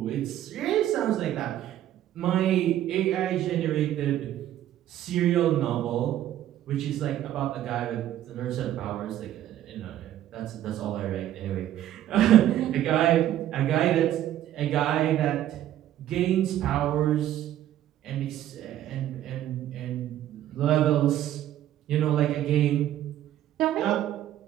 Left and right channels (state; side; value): quieter; left; 12.3 dB